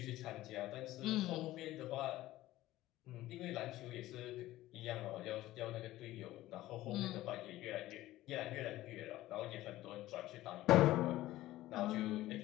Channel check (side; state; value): right; quieter; 15.9 dB